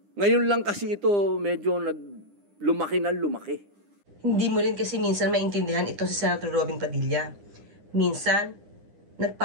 Ngayon lang kasi ito medyo lumaki na lumaki. Hindi mo rin kasi minsan maintindihan ito si Senator Robin Padilla. Minsan,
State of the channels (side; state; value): left; late; 9.9 ms